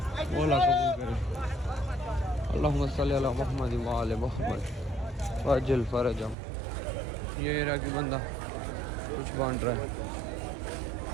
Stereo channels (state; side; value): drops out; left; at 6.4 s